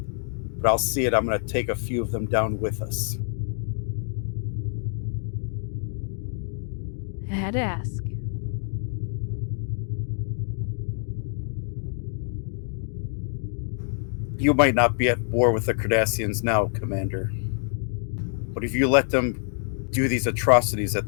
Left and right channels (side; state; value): right; silent; digital silence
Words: but I'll see it. I'm going to take a few of them down with us. I had to ask. You might not be at war with the Cardassians now, Commander. But if you let them do these atrocities that